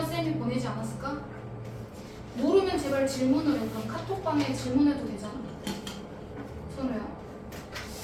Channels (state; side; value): identical; both; correlation 1.00